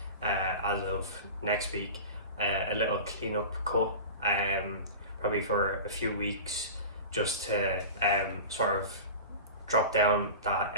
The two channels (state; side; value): inverted; both; correlation -0.32